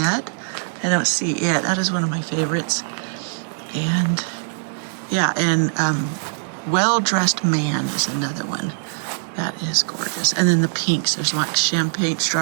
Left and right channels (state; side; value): silent; left; digital silence